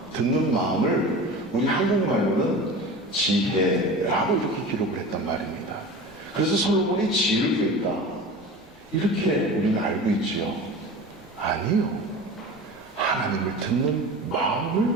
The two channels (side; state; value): left; noise; rumble, 27 dB below the sound